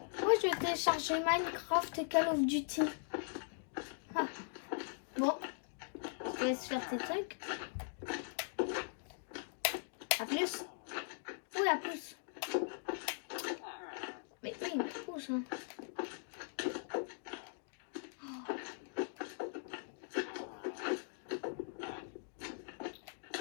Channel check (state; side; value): silent; right; digital silence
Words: Moi, je vais télécharger Minecraft et Call of Duty. Ah. Bon. Je te laisse faire tes trucs. À plus. Oui, à plus. Mais oui, il me pousse. Hein.